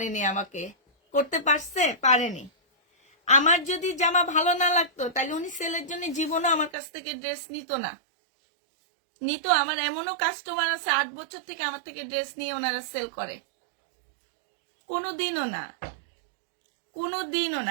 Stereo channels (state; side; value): drops out; left; at 6.7 s